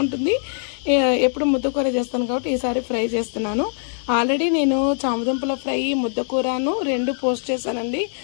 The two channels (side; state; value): right; silent; 59 dB below the other